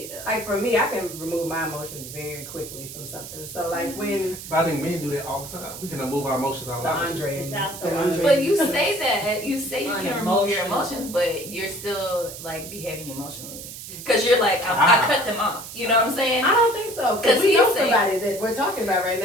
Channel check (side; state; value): right; noise; hiss, 12 dB below the sound